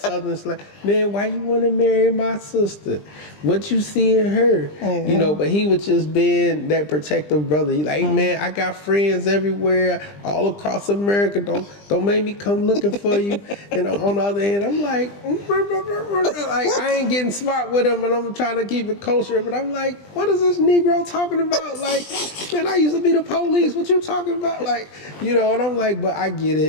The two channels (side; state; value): right; late; 20 ms